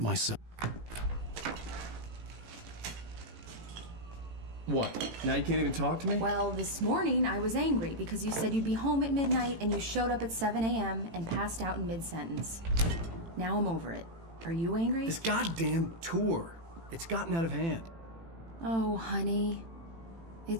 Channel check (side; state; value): left; late; 18 ms